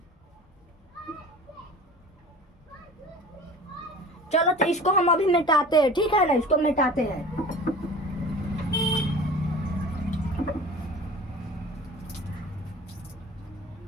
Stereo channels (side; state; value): both; normal; correlation 0.41